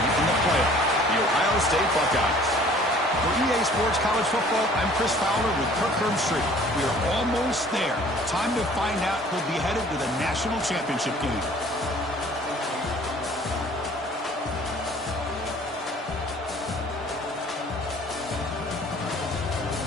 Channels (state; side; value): normal; both; correlation 0.52